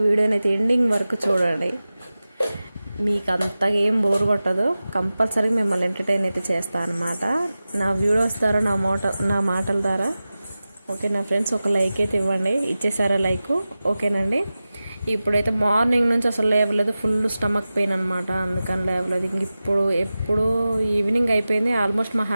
వీడియోని అయితే ఎండింగ్ వరకు చూడండి. మీకు అంతగా ఏం బోర్ కొట్టదు. కంపల్సరీ మిమ్మల్ని ఎంటర్టైన్ అయితే చేస్తాను అనమాట నా వీడియోస్ ద్వారా, నా మాటల ద్వారా. ఓకేనా ఫ్రెండ్స్, ఒక లైక్ అయితే ఇవ్వండి. ఇచ్చేసారా లైక్? ఓకేనండి. ఇప్పుడైతే మార్నింగ్ నుంచి అసలు లేవలేదు, ఫుల్ స్టమక్ పెయిన్ అనమాట, అందుకని లేవలేదు. ఇంక ఎప్పుడు ఈవినింగ్ అయిపోయింది. ఆల్మోస్ట్ మా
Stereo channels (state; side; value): inverted; both; correlation -0.95